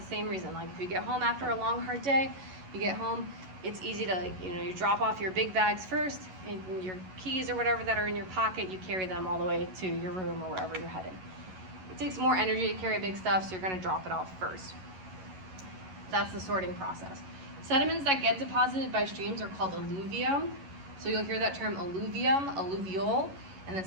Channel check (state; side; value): late; left; 11 ms